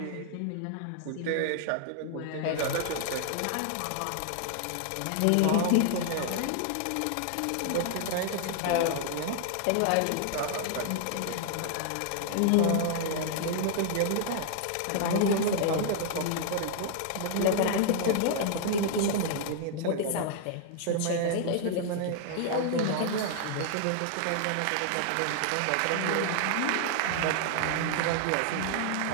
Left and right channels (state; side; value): different; both; correlation 0.00